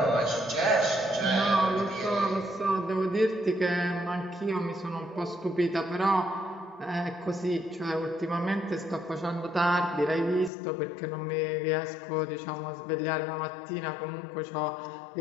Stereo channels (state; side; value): drops out; right; at 10.5 s